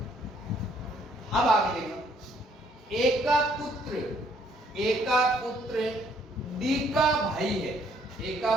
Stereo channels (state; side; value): normal; both; correlation 0.65